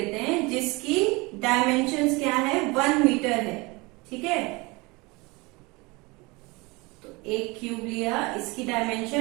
हैं जिसकी डायमेंशंस क्या है, 1 मीटर है, ठीक है। तो एक क्यूब लिया, इसकी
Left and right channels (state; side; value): quieter; left; 25.2 dB